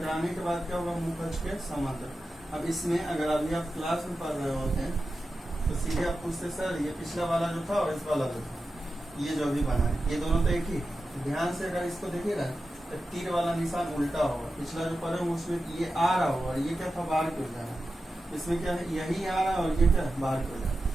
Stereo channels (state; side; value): normal; both; correlation 0.92